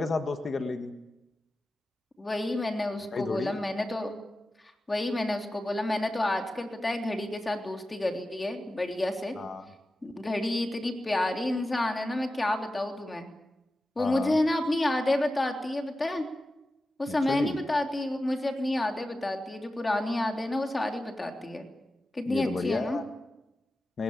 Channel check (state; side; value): normal; both; correlation 0.93